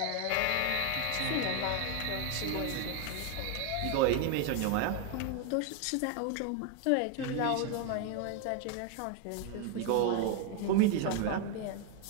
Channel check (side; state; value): both; different; correlation 0.01